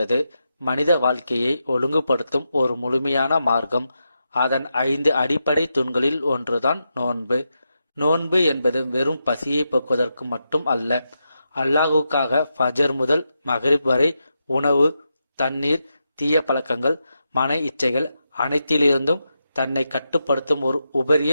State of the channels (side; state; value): both; inverted; correlation -0.86